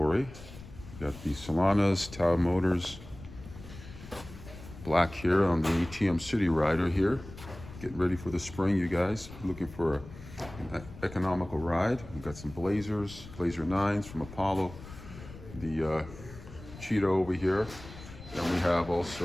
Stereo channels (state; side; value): noise; left; rumble, 15 dB below the sound